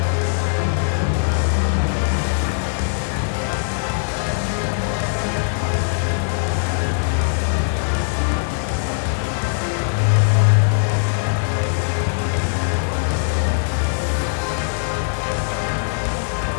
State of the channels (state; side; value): silent; right; digital silence